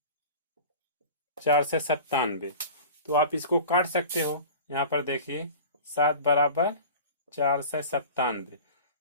4 से 97। तो आप इसको काट सकते हो। यहाँ पर देखिए 7 बराबर 497।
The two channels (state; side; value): inverted; both; correlation -0.38